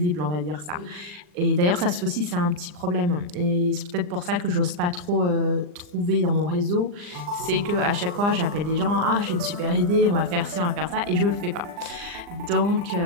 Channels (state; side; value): late; left; 39 ms